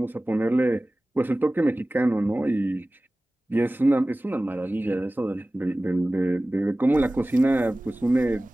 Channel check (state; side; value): normal; both; correlation 0.97